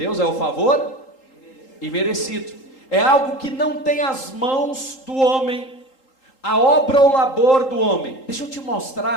é o favor imerecido. É algo que não tem as mãos do homem, a obra ou labor do homem. Deixa eu te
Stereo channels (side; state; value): right; late; 3.8 ms